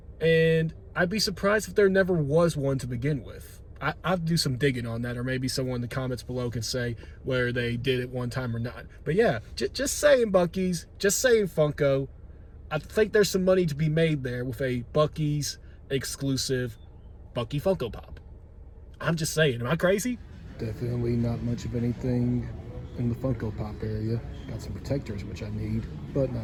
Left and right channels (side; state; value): both; identical; correlation 1.00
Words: and I'd be surprised if there never was one to begin with. I'll do some digging on that, or maybe someone in the comments below can say whether they did it one time or not. But yeah, just saying Buc-ee's, just saying Funko. I think there's some money to be made there with a Buc-ee's exclusive Buc-ee Funko Pop. I'm just saying, am I crazy? Definitely not much of anything in the Funko Pop area. Got some protectors, which I need, but